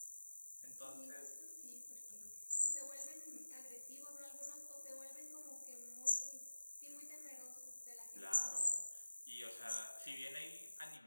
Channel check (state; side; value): inverted; both; correlation -1.00